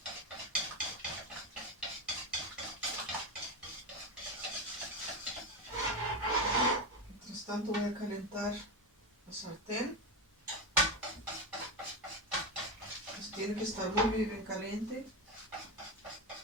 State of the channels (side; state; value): both; normal; correlation 0.15